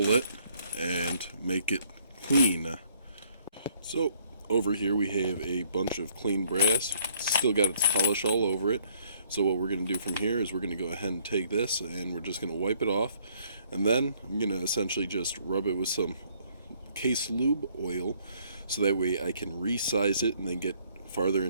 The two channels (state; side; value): inverted; both; correlation -0.64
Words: it and make it clean. So over here we have a bunch of clean brass. Still got its polish all over it. So what we're going to do from here is we're going to go ahead and take this and we're just going to wipe it off. And then I'm going to essentially just rub it with some case lube oil so that way I can resize it and then get farther